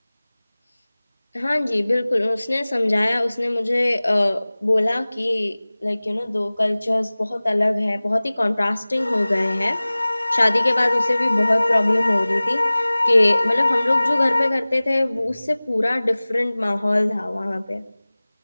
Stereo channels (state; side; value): inverted; both; correlation -0.99